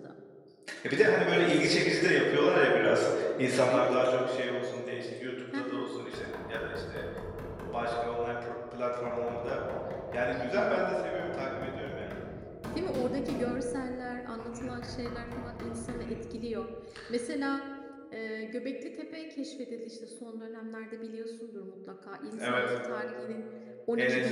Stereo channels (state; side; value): identical; both; correlation 1.00